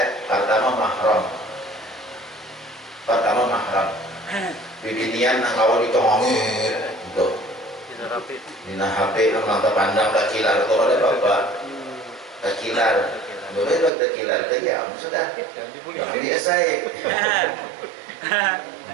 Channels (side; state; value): left; drops out; at 13.9 s